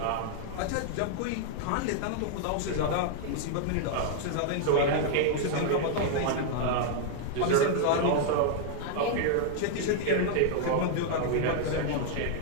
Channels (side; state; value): both; different; correlation 0.00